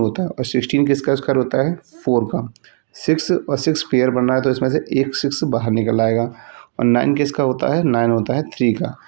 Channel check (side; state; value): left; silent; digital silence